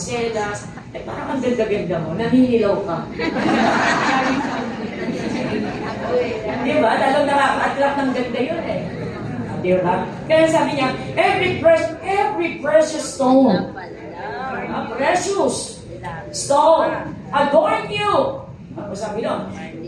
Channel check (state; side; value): identical; both; correlation 1.00